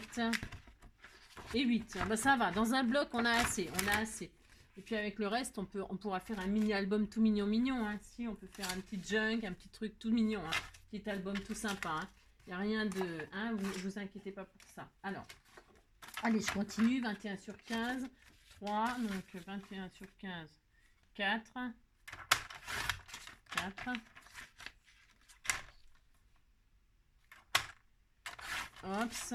et 8. Ah bah ça va, dans un bloc, on a assez. Et puis avec le reste, on pourra faire un mini-album tout mignon. Hein. Si, on peut faire un petit junk, un petit truc tout mignon. Hein. Petit album tout sympa. Il n'y a rien de... Hein, vous inquiétez pas pour ça. Alors, allez, je continue. 21 sur 15. 3. Donc, 21 sur 15. 4. 4. Hops.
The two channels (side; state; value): both; identical; correlation 1.00